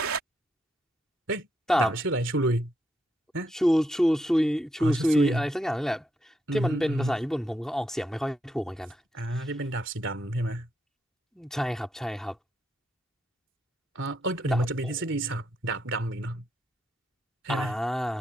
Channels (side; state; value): both; normal; correlation 0.80